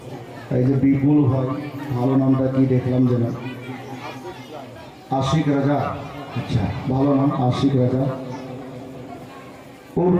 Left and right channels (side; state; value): both; identical; correlation 1.00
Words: এই যে বিপুল ভাই, ভালো নামটা কি দেখলাম যেন, আশিক রাজা। আচ্ছা, ভালো নাম আশিক রাজা ওর